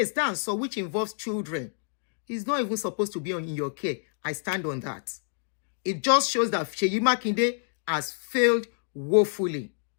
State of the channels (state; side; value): silent; right; digital silence